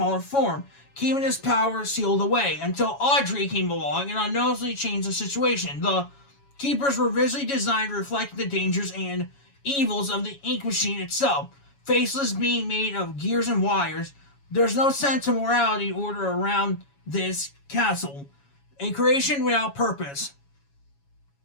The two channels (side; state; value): right; late; 7.2 ms